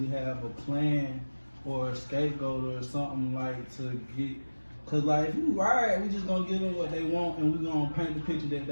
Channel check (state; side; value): inverted; both; correlation -1.00